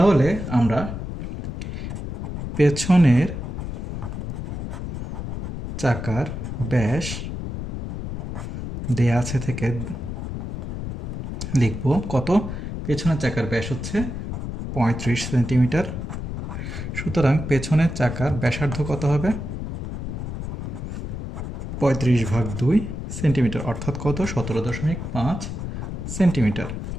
আমরা পেছনের চাকার ব্যাস দেয়া আছে থেকে লিখব কত? পেছনের চাকার ব্যাস হচ্ছে 35 সেন্টিমিটার। সুতরাং পেছনের চাকার ব্যাসার্ধ কত হবে? 35/2 সেন্টিমিটার অর্থাৎ কত? 17.5 সেন্টিমিটার।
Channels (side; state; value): left; noise; rumble, 6 dB below the sound